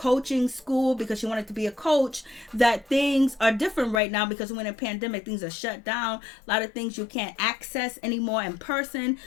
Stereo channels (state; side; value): drops out; right; at 4.0 s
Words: school, because she wanted to be a coach, that things are different right now, because when a pandemic, things are shut down. A lot of things you can't access anymore in person.